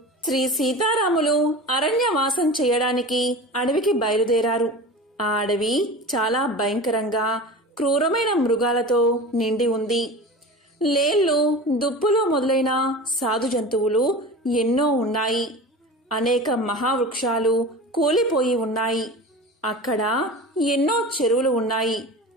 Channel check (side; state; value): both; normal; correlation 0.33